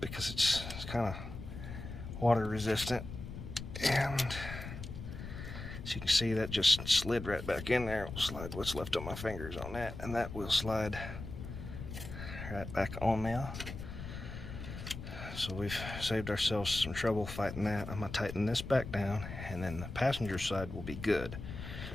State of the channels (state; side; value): noise; left; rumble, 9 dB below the sound